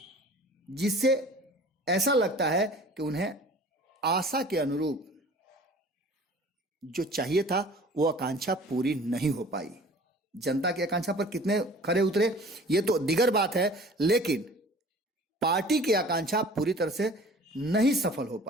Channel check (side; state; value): both; normal; correlation 0.46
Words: जिससे ऐसा लगता है कि उन्हें आशा के अनुरूप जो चाहिए था वो आकांक्षा पूरी नहीं हो पाई। जनता की आकांक्षा पर कितने खरे उतरे ये तो दिगर बात है, लेकिन पार्टी की आकांक्षा पूरी तरह से नहीं सफल हो